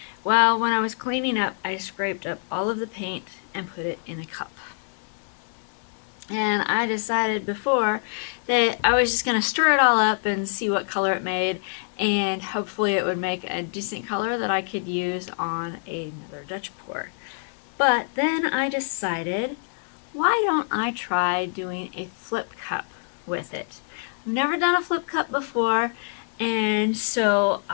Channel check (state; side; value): silent; right; digital silence